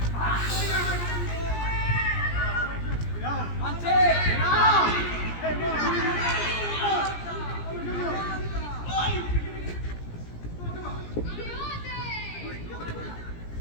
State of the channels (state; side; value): late; right; 17 ms